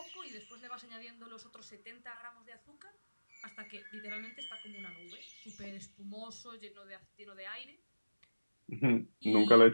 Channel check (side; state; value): both; inverted; correlation -1.00